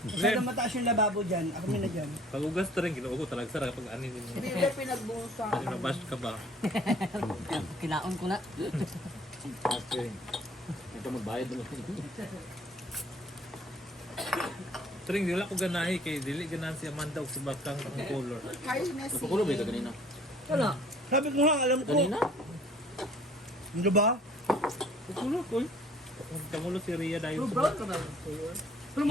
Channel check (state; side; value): normal; both; correlation 0.53